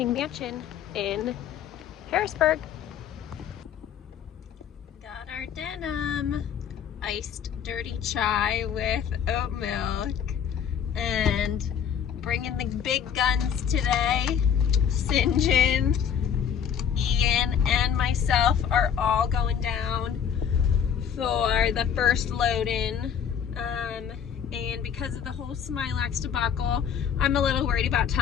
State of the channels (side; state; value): right; quieter; 8.2 dB